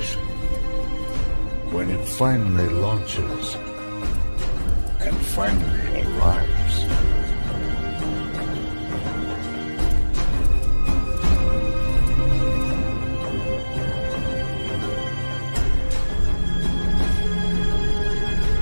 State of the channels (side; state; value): both; inverted; correlation -1.00